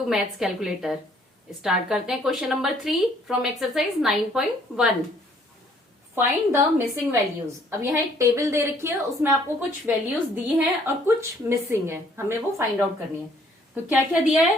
maths calculator. Start करते हैं question number 3 from exercise 9.1। Find the missing values. अब यहाँ एक टेबल दे रखी है, उसमें आपको कुछ वैल्यूज दी हैं और कुछ मिसिंग है, हमें वो फाइंड आउट करनी है। तो क्या क्या दिया है?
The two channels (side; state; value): both; normal; correlation 0.62